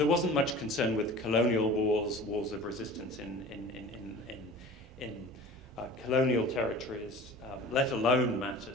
wasn't much concern with colonial wars of resistance in colonial territories, let alone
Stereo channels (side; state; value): both; normal; correlation 0.40